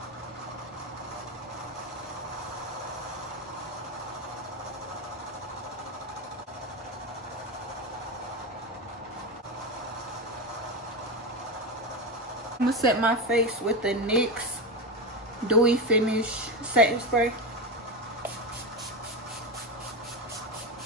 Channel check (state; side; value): normal; both; correlation 0.16